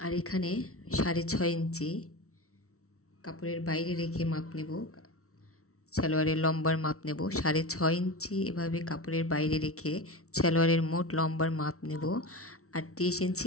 আর এখানে 6.5 ইঞ্চি কাপড়ের বাইরে রেখে মাপ নেব, সালোয়ারের লম্বার মাপ নেব। 6.5 ইঞ্চি এভাবে কাপড়ের বাইরে রেখে সালোয়ারের মোট লম্বার মাপ নেব 38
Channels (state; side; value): late; right; 0.63 ms